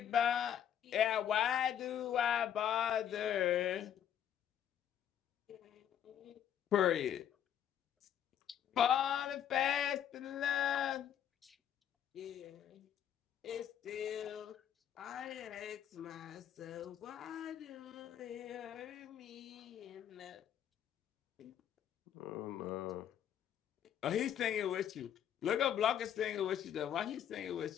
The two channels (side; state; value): right; quieter; 9.8 dB